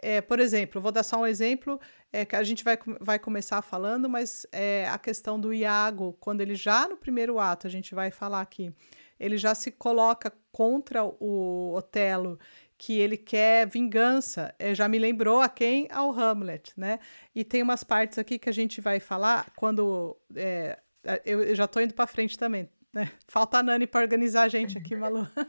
por exemplo, vou dar só um exemplo, que a gente vai começar falando, mas a questão do Iago, quando ele já no primeiro ato, a gente vai falar aqui, ele já se coloca contra o Otelo, que ele quer vingança. Já me lembrou a quem? Ao Hamlet, né? E tem umas partes aqui que a gente vai falar quando... eu já tô indo para frente também, né? Falta a Nani para organizar a gente aqui, Malu.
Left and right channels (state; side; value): inverted; both; correlation -1.00